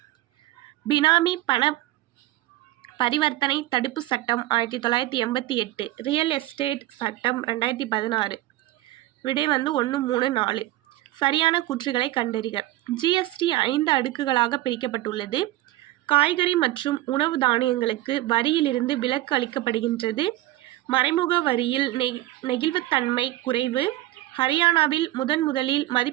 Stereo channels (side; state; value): left; quieter; 16.3 dB